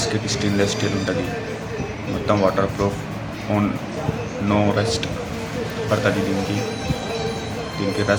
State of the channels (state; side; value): identical; both; correlation 1.00